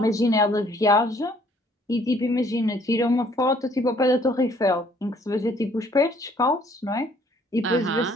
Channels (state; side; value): normal; both; correlation 0.61